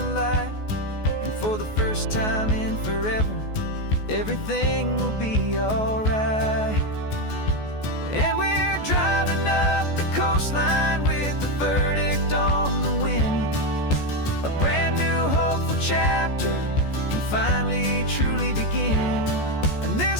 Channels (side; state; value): right; late; 14 ms